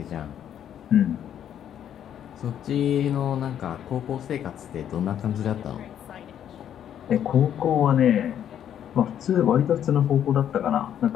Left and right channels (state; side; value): quieter; right; 9.9 dB